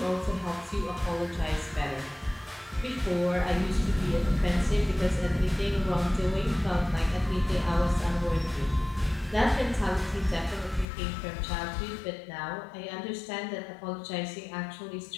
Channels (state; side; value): drops out; right; at 10.9 s